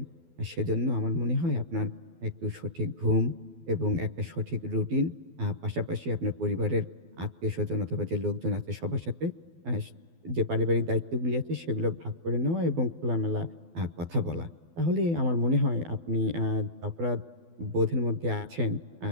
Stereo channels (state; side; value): late; left; 12 ms